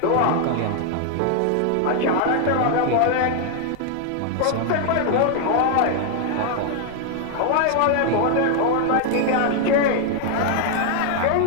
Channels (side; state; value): both; different; correlation 0.00